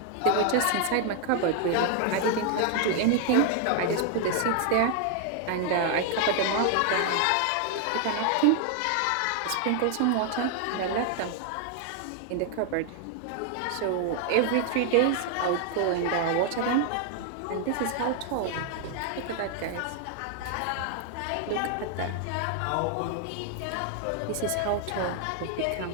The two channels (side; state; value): both; different; correlation 0.00